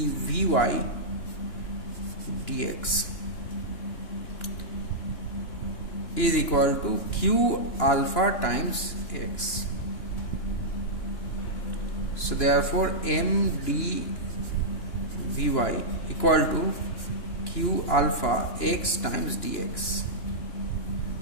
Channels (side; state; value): right; late; 2.9 ms